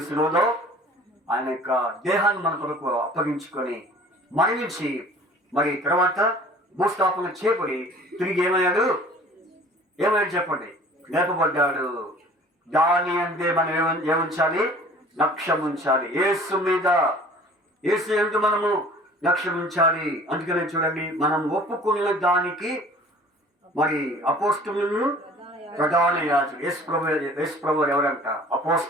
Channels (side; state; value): both; normal; correlation 0.47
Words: శిలువలో ఆయన యొక్క దేహాన్ని మన కొరకు అప్పగించుకొని మరణించి మరి తర్వాత భూస్థాపన చేపడి తిరిగి ఏమయ్యాడు చెప్పండి? లేపబడ్డాడు. దాని అందే మనం ఏముంచాలి? లక్ష్యం ఉంచాలి. యేసు మీద, యేసు యందు మనము లక్ష్యం ఉంచాలి. అందుకనే చూడండి, మనం ఒప్పుకున్న దానికి మరి అపోస్తులను ప్రధాన యాజకులు, యేసు ప్రభు ఎవరంట?